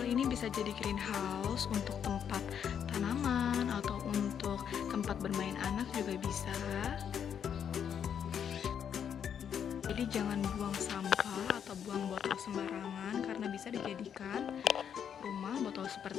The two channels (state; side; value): quieter; right; 8.2 dB